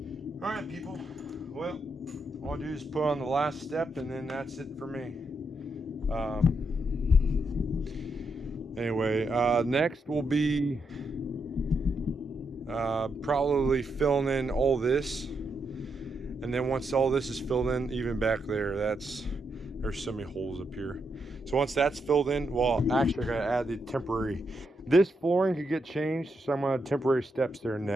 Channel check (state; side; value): normal; both; correlation 0.81